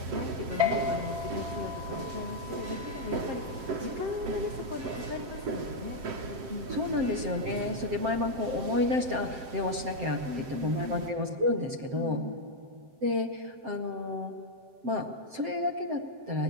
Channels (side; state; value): left; late; 7.6 ms